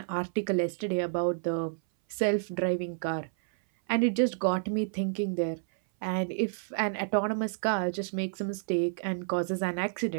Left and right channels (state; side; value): silent; left; 58 dB below the other